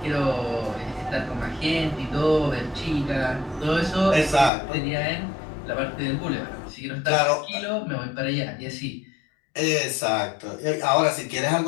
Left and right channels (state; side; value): drops out; right; at 4.5 s